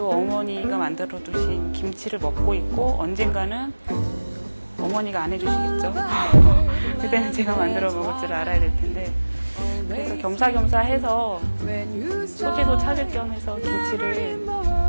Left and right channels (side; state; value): both; inverted; correlation -1.00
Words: 어머니가 만들어 두신 김치를 먹고 있고 언젠가는 어머니가 안 해주시겠죠. 그때는 제가 만들어 먹을 줄 알아야 될 텐데 그래서 겸사겸사 해서 소재도 찾을 겸 해서 김치를